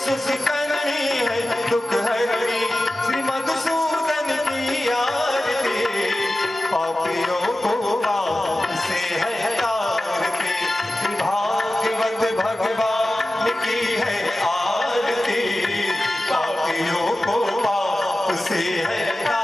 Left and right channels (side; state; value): both; normal; correlation 0.95